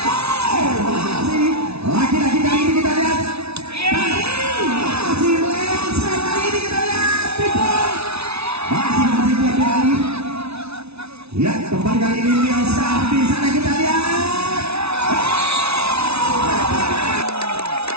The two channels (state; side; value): late; left; 0.80 ms